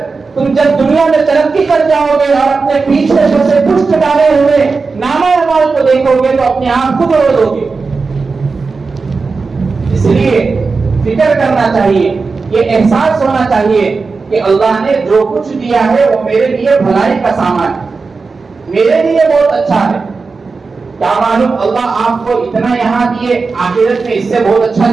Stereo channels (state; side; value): quieter; left; 4.4 dB